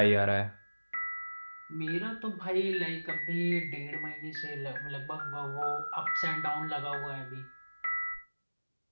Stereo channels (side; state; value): both; inverted; correlation -1.00